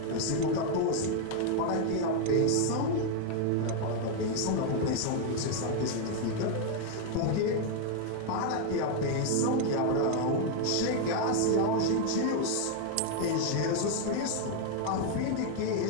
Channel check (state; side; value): different; both; correlation 0.00